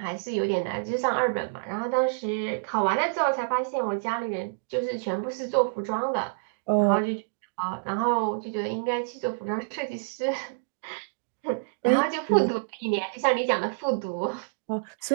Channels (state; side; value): quieter; left; 39.8 dB